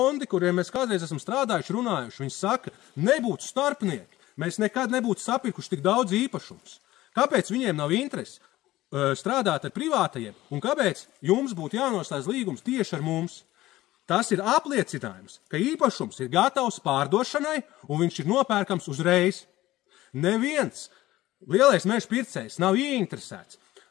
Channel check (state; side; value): quieter; right; 16.4 dB